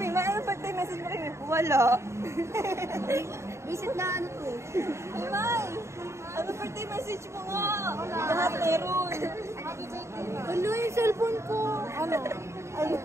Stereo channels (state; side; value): late; left; 0.14 ms